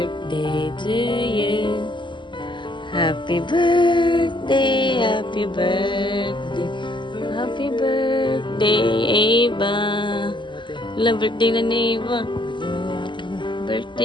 to you. Happy birthday, happy birthday. Happy birthday, Eva. Wala, birthday na ni Eva.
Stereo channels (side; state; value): right; late; 0.23 ms